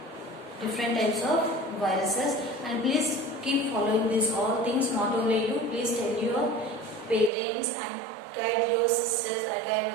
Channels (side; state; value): left; drops out; at 7.3 s